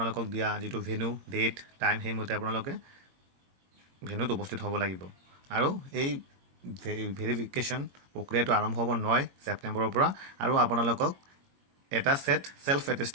দিয়া যিটো ভেনু, ডেট, টাইম সেইমতে আপোনালোকে ভেনুত উপস্থিত হ'ব লাগিব। আৰু এই ভেৰিফিকেশ্যন প্ৰক্ৰিয়াটো আৰম্ভ হ'ব 9 ছেপ্টেম্বৰৰ পৰা। আৰু আপোনালোকক এটা set self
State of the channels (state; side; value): late; left; 22 ms